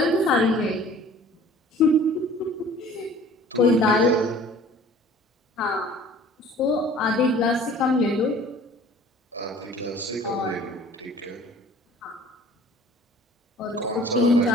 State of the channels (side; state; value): both; normal; correlation 0.49